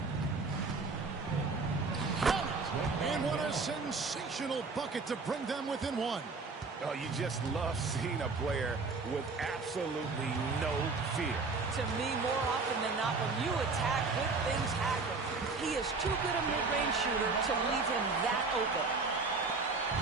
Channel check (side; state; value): left; quieter; 4.1 dB